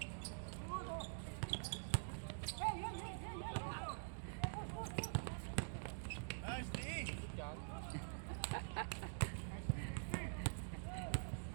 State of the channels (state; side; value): silent; left; digital silence